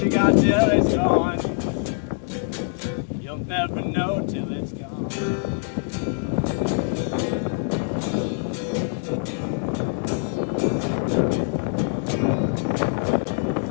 you got till it's gone. You'll never know till it's gone.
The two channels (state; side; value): silent; right; digital silence